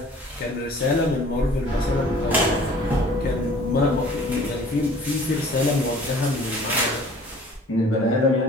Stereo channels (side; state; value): both; normal; correlation 0.50